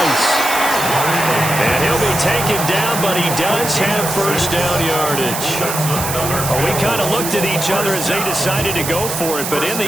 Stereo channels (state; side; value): noise; right; hiss, 5 dB below the sound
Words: And he'll be taken down, but he does have first down yardage. Well, we kind of looked at each other as they decided to go for it, but in the